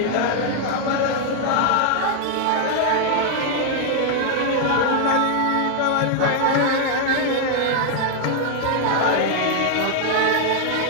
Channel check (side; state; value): both; different; correlation 0.00